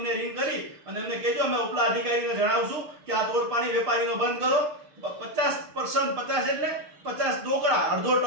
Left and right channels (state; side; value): late; left; 6.7 ms